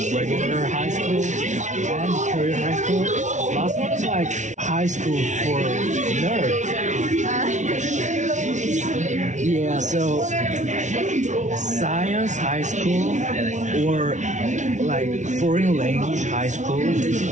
regular high school and career high school. Last one is like high school for nerds. Yeah, so science high school or like foreign language high school,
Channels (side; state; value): left; late; 0.35 ms